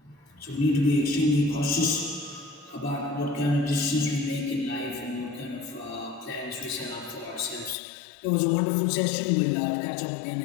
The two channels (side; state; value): right; drops out; at 7.8 s